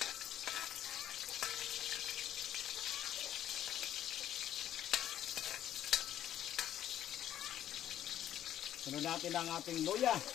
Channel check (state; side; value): quieter; right; 11.5 dB